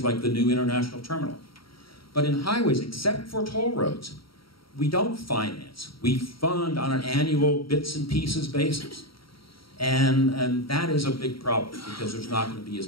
like the new international terminal. But in highways, except for toll roads, we don't finance. We fund on an annual bits and pieces basis. And that is a big problem because there's not going to be as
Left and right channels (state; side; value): late; right; 0.74 ms